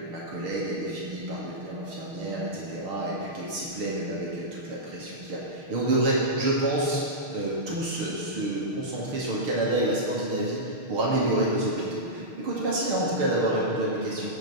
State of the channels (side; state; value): left; late; 6.6 ms